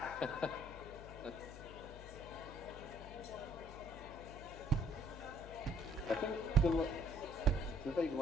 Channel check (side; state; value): left; noise; hum, 13 dB below the sound